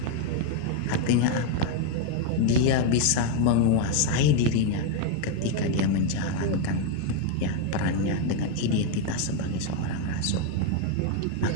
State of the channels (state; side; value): different; both; correlation 0.01